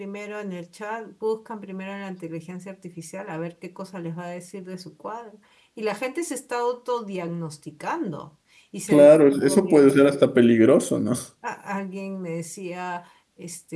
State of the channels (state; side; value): identical; both; correlation 1.00